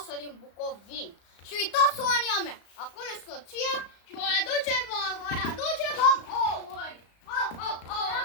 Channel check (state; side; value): late; right; 35 ms